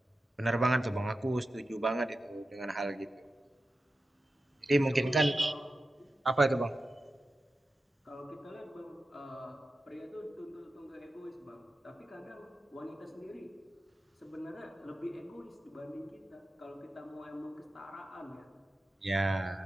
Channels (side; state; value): both; normal; correlation 0.92